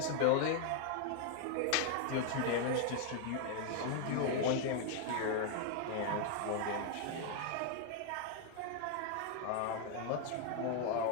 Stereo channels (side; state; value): both; different; correlation 0.00